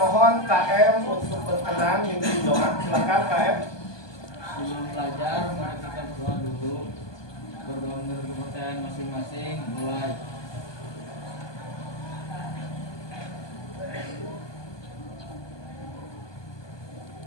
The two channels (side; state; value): right; late; 1.2 ms